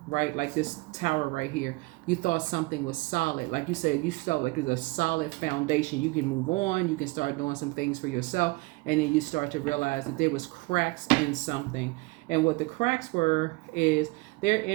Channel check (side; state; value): left; quieter; 24.5 dB